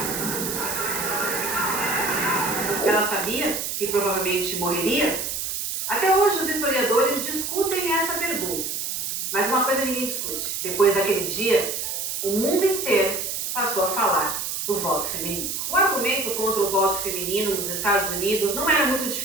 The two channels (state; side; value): noise; right; hiss, 3 dB below the sound